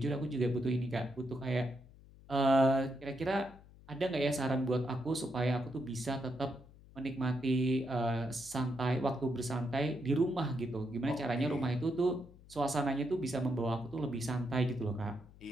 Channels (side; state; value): left; noise; hum, 22 dB below the sound